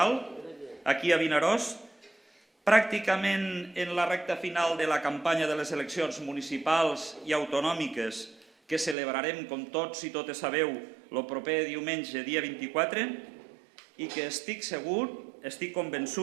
aquí a Vinaròs. Pràcticament en la recta final de la campanya de les eleccions municipals i autonòmiques que celebrarem, com tots i totes sabeu, el proper diumenge, dia 24, i que estic segur, estic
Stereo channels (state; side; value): drops out; left; at 9.0 s